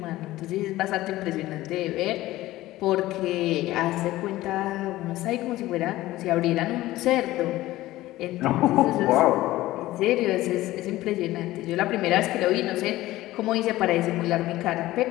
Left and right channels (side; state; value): right; quieter; 16.6 dB